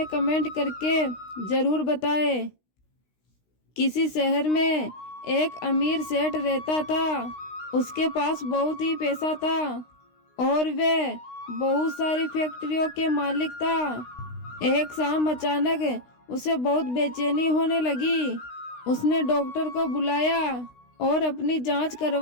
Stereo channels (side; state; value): right; late; 16 ms